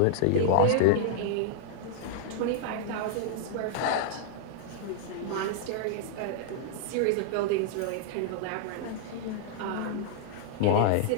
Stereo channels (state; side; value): different; both; correlation -0.01